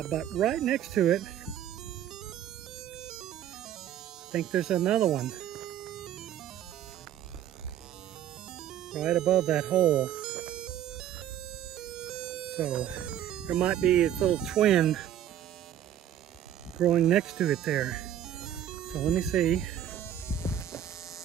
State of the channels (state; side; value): quieter; left; 11.0 dB